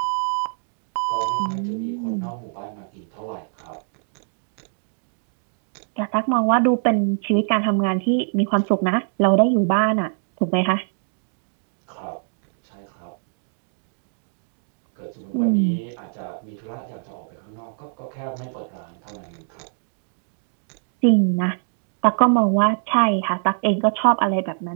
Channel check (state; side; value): silent; left; digital silence